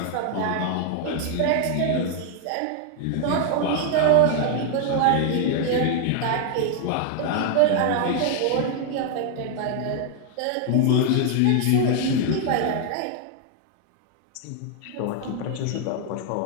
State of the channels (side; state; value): both; different; correlation 0.00